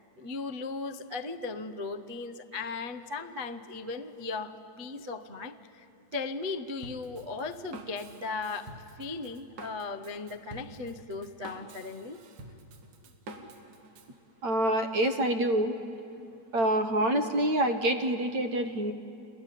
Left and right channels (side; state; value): left; late; 8.8 ms